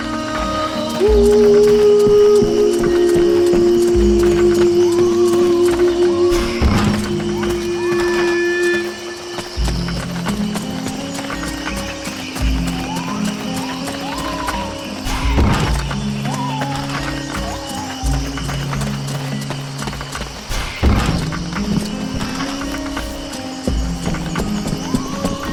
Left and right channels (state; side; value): identical; both; correlation 1.00